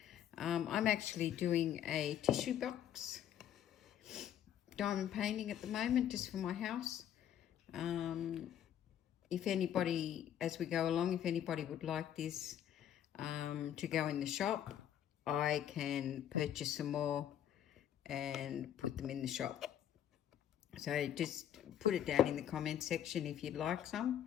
I'm actually doing a tissue box diamond painting at the moment just for my house. If anybody, as we go along, if anybody would like this to go in the shop, I can purchase some more and put them in the shop. So just put it down in the comment section if you'd like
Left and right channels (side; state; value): right; quieter; 10.4 dB